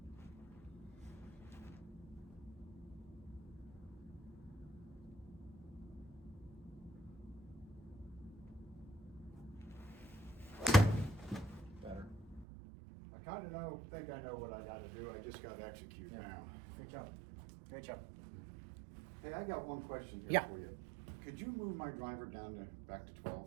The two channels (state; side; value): drops out; left; at 12.5 s